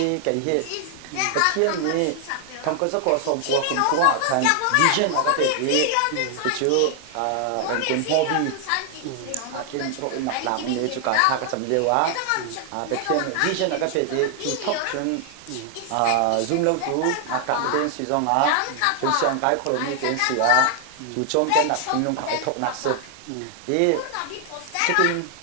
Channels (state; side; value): different; both; correlation 0.00